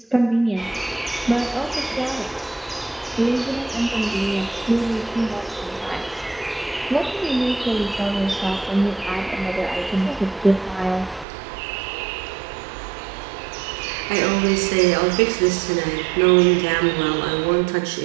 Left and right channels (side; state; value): left; drops out; at 11.2 s